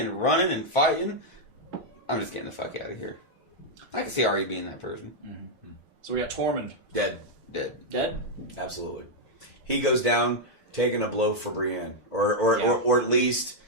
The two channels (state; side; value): normal; both; correlation -0.02